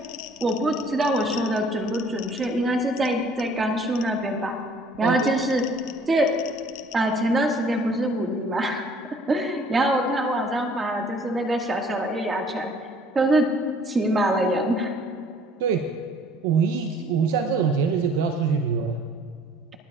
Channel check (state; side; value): normal; both; correlation 0.57